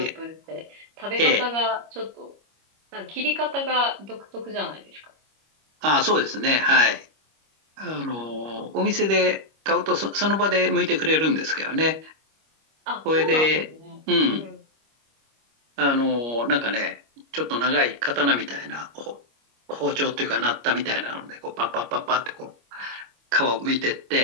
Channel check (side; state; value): left; late; 25 ms